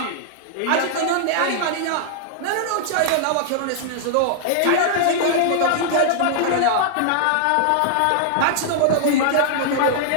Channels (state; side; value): different; both; correlation -0.01